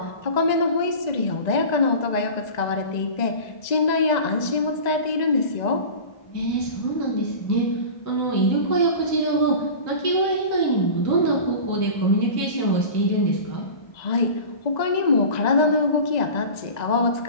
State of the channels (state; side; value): late; right; 1.9 ms